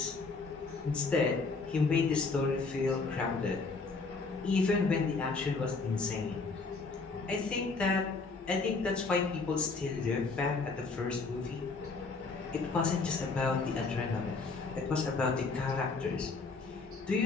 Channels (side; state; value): right; quieter; 4.1 dB